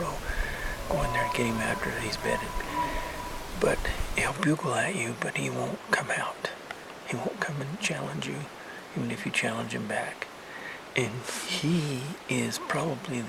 row. Go in there and get him after he's bedded. But he'll bugle at you, but he won't come out. He won't come and challenge you, even if you challenge him back. And he is probably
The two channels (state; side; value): identical; both; correlation 1.00